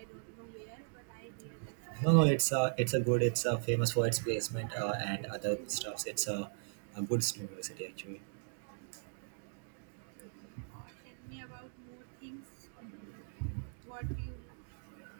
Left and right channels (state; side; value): silent; left; digital silence